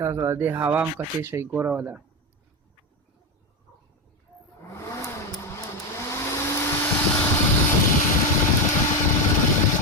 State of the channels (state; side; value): normal; both; correlation 0.12